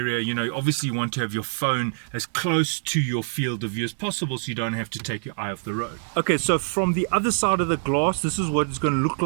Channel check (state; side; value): silent; left; digital silence